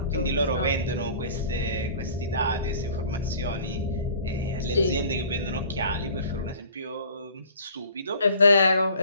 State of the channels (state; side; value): inverted; both; correlation -0.48